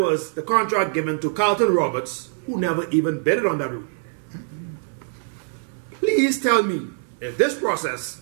the contract given to Carlton Roberts, who never even bidded on that route? Please tell me if this process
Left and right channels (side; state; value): left; silent; 63 dB below the other